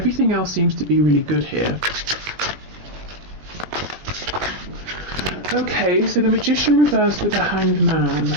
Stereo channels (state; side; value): late; left; 20 ms